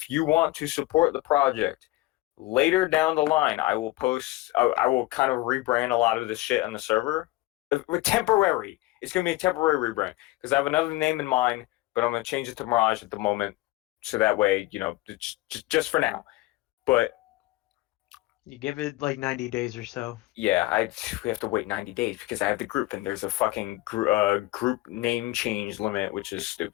want to support the project, later down the line, I will post. I will kind of rebrand a lot of this shit on the server. Temporary. It's gonna be a temporary rebrand because I have another name in mind, but I'm gonna change it to Mirage at the moment, so that way just for now. But You give it like 90 days or so. yeah, we have to wait 90 days because I have the group and there's a fucking group name change limit, which is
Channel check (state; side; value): quieter; right; 18.8 dB